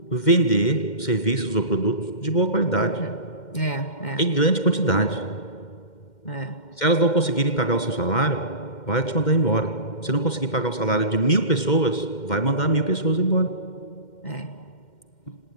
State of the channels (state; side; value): late; right; 2.1 ms